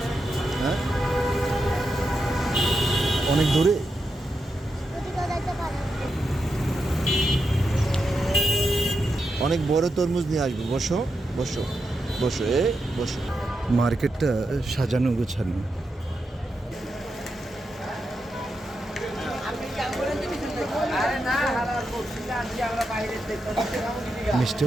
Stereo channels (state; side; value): normal; both; correlation 0.86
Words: হ্যাঁ, অনেক দূরে। অনেক বড় তরমুজ নিয়ে আসবো। বসো বসো বসো, বসো। মার্কেটটা সাজানো গোছানো। মিষ্টি